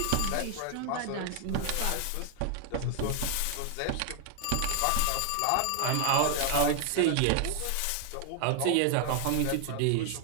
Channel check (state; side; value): different; both; correlation 0.00